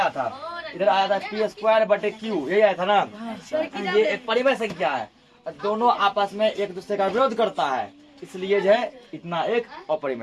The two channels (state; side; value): identical; both; correlation 1.00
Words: था, इधर आया था p² बटे q, यही आया था ना। ये एक परिमेय संख्या है, दोनों आपस में एक दूसरे का विरोध करता है, इसलिए जो है इतना एक